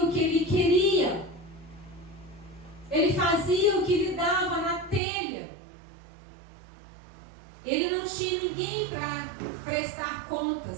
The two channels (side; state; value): left; drops out; at 5.0 s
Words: o que ele queria. Ele fazia o que lhe dava na telha. Ele não tinha ninguém para prestar